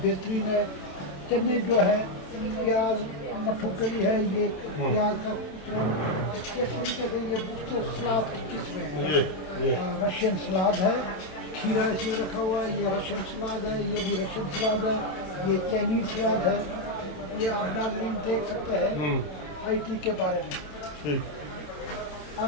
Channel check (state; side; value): late; right; 27 ms